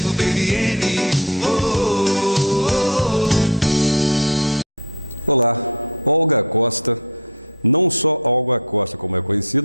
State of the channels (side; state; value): both; normal; correlation 0.13